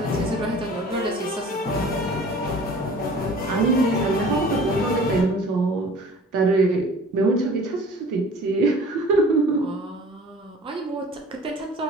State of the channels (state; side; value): normal; both; correlation 0.46